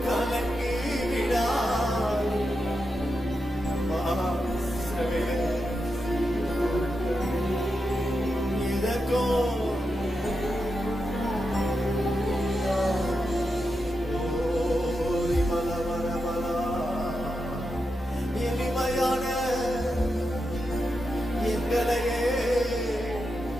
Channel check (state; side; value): normal; both; correlation 0.87